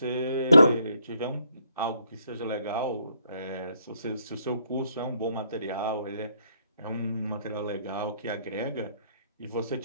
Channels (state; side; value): inverted; both; correlation -0.72